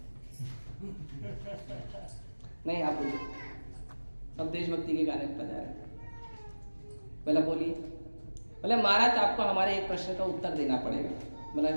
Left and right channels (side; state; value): both; inverted; correlation -1.00